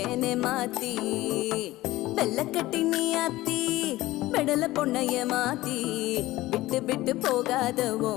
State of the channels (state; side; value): quieter; right; 17.5 dB